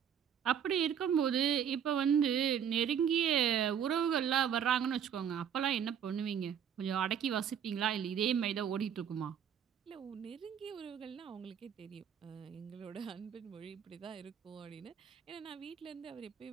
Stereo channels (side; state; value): left; quieter; 8.4 dB